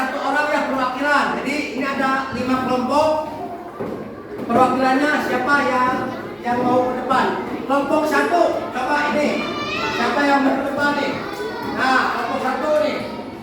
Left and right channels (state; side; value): identical; both; correlation 1.00